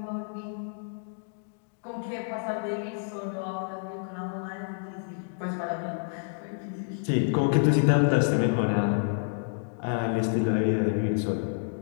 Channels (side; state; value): right; silent; digital silence